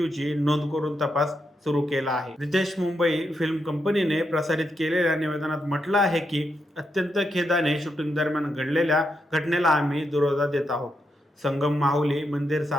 नोंद करून तपास सुरू केला आहे. रितेश मुंबई फिल्म कंपनीने प्रसारित केलेल्या निवेदनात म्हटलं आहे की अत्यंत खेदाने शूटिंग दरम्यान घडलेल्या घटनेला आम्ही दुजोरा देत आहोत. संगम माहुली मंदिर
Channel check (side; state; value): both; normal; correlation 0.83